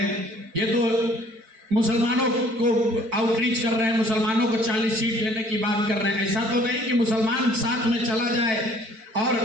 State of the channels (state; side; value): late; left; 4.5 ms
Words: ये तो मुसलमानों को आउटरीच कर रहे हैं, मुसलमानों को 40 सीट देने की बात कर रहे हैं। ऐसा तो नहीं कि मुसलमान साथ में चला जाए और